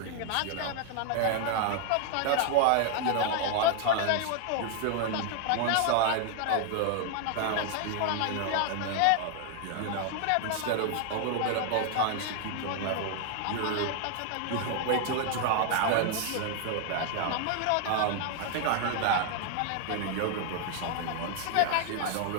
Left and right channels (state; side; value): different; both; correlation 0.00